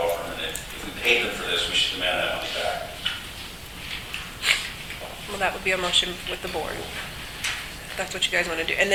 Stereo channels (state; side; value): identical; both; correlation 1.00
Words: firm, and if we paid them for this, we should demand that money back. Well, that would be a motion with the board. That's what you guys want to do. And